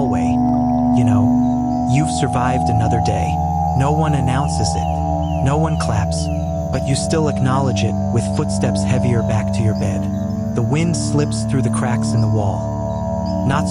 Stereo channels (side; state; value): both; identical; correlation 1.00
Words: you know, you've survived another day. No one announces it, no one claps, but you still acknowledge it with footsteps heavier back to your bed. The wind slips through the cracks in the wall, not